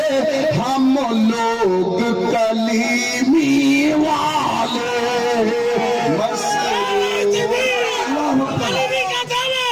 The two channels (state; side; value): identical; both; correlation 1.00